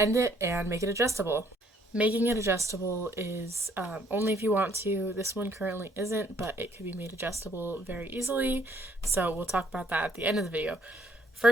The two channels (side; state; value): both; normal; correlation 0.65